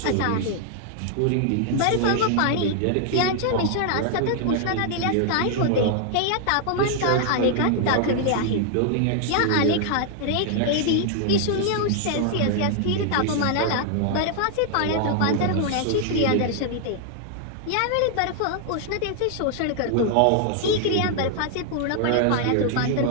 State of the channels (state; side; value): different; both; correlation 0.00